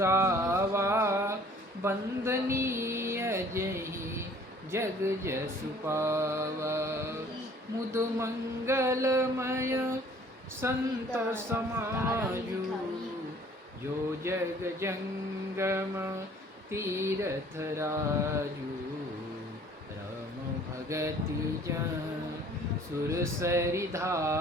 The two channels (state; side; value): normal; both; correlation 0.54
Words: बंदनीय जहि जग जसु पावा। मुद मंगलमय संत समाजु, जो जग जंगम तीरथ राजू। राम भगति जन सुरसरि